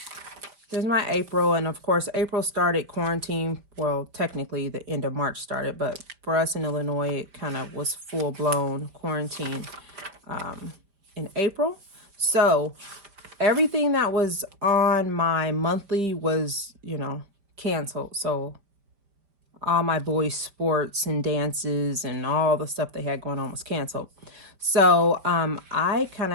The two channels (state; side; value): late; left; 5.0 ms